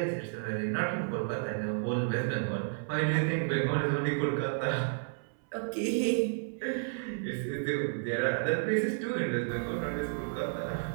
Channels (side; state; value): left; silent; 57 dB below the other